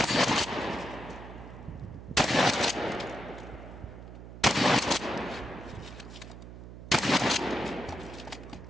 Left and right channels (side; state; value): right; noise; hum, 13 dB below the sound